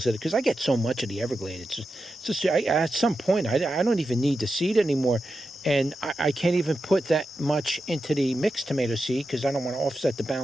at it because I get so much of the Everglade. It's just at some point, I don't even need the seed anymore. And I can't even put that much into the mixed tomato seed because I don't want to offset the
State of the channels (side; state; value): both; normal; correlation 0.90